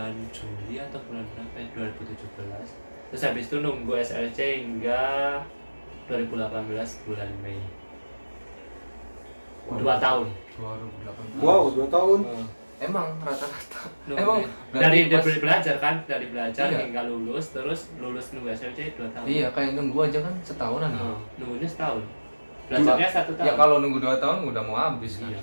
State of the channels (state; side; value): inverted; both; correlation -1.00